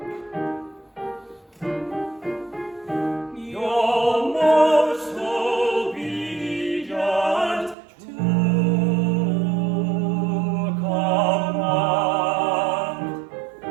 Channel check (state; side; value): drops out; left; at 7.8 s